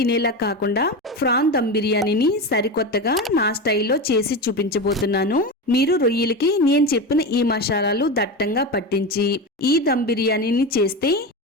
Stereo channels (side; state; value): both; normal; correlation 0.21